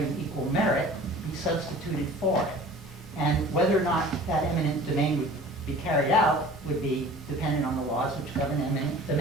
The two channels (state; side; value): noise; left; hum, 25 dB below the sound